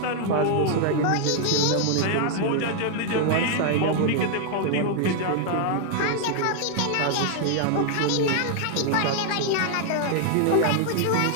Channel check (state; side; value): different; both; correlation 0.00